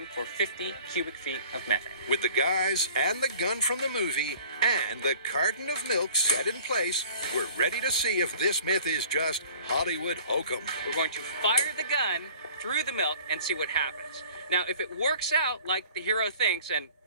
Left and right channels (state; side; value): inverted; both; correlation -0.50